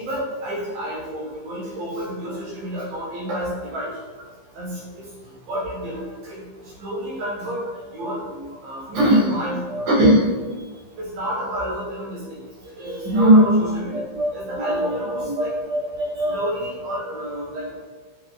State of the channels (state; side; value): late; left; 15 ms